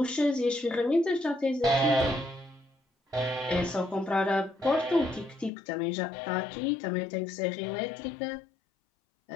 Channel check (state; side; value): drops out; right; at 5.5 s